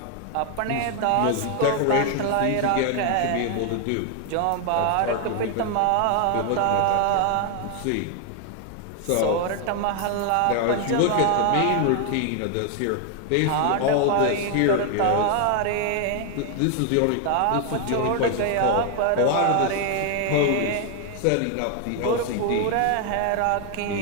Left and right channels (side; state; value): both; different; correlation 0.00